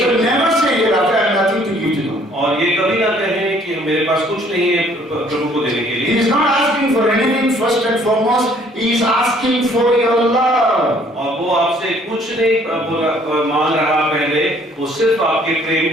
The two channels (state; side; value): normal; both; correlation 0.60